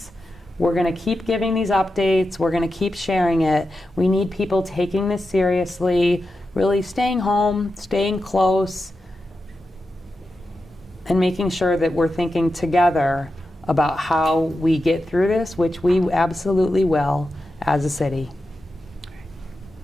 We're going to keep giving these updates. We're going to keep sharing it. We need people taking this seriously, really staying home, staying close, and making sure that we're thinking together about how we get through this, which we absolutely will as a city.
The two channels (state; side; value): normal; both; correlation 0.90